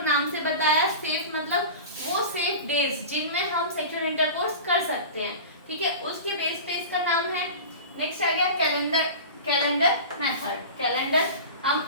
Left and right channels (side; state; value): both; inverted; correlation -0.32